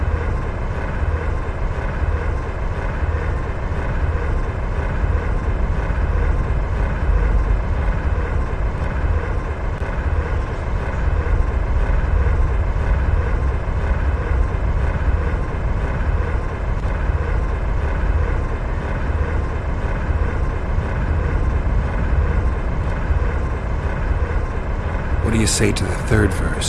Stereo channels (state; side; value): identical; both; correlation 1.00